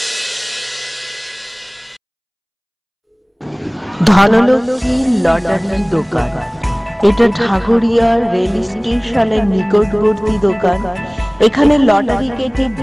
ধনলক্ষ্মী লটারি দোকান। এটা ঠাকুরিয়া রেল স্টেশনের নিকটবর্তী দোকান। এখানে লটারি কেটে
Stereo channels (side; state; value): both; identical; correlation 1.00